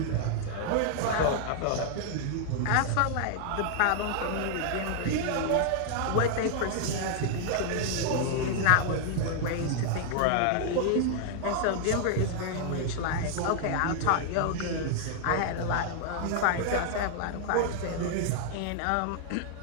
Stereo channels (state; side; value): different; both; correlation -0.01